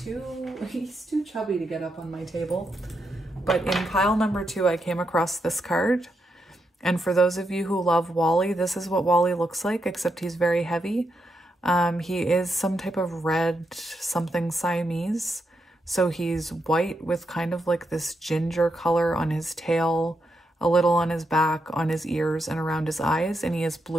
too chubby to get up on my table. But in pile number 2, I came across this card. And for those of you who love Wally, this is what Wally looks like, except he's very heavy. He is some type of red something Siamese. So he's white with kind of like this ginger color on his tail, a little on his back, on his ears, and around his eyes. And he has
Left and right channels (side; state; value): both; normal; correlation 0.83